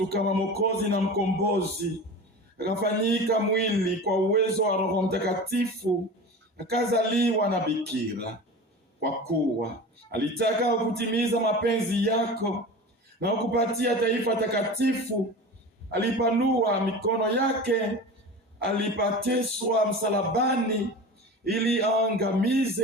kama Mwokozi na mkombozi, akafanyika mwili kwa uwezo wa Roho Mtakatifu, akazaliwa na bikira. Kwa kuwa alitaka kutimiza mapenzi yako na kukupatia taifa takatifu, alipanua mikono yake alipateswa msalabani ili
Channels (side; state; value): both; normal; correlation 0.33